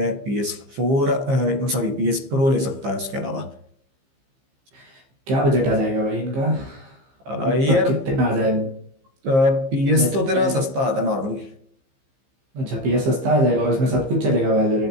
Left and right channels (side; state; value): left; late; 15 ms